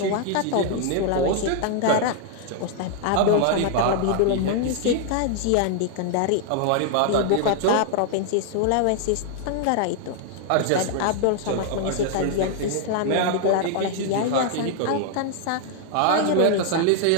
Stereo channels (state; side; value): different; both; correlation 0.00